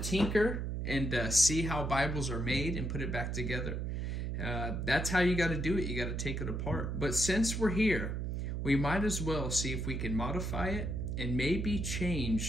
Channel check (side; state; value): right; noise; hum, 2 dB below the sound